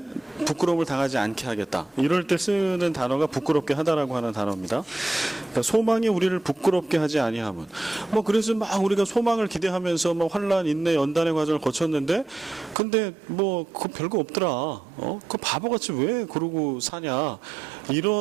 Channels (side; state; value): left; drops out; at 12.8 s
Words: 부끄러움을 당하지 않게 하겠다, 이럴 때 쓰는 단어가 부끄럽게 하다라고 하는 단어입니다. 그러니까 소망이 우리를 부끄럽게 하지 아니함은, 뭐 그래서 막 우리가 소망을 기대하면서 뭐 환란, 인내, 연단의 과정을 거쳤는데, 근데 뭐 그거 별거 없더라, 그 바보같이 왜 그러고 사냐,